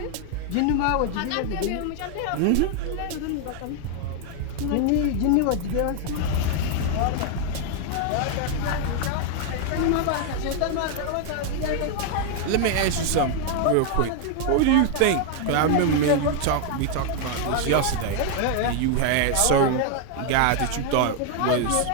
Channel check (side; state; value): both; different; correlation 0.00